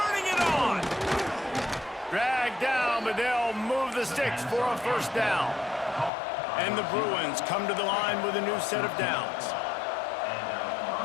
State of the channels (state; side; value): drops out; right; at 6.1 s